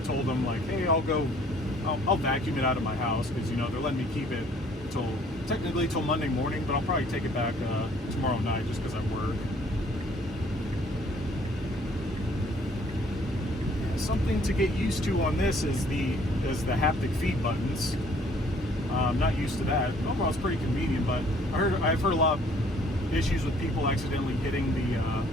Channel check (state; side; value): normal; both; correlation 0.59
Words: them, like, hey, I'll vacuum it out of my house, because they're letting me keep it technically till Monday morning, but I'll probably take it back tomorrow night just because I work. Something to get used to on this is the haptic feed buttons. I'm not used to that. Overall, it's pretty convenient, but I've heard a lot of issues with people accidentally hitting the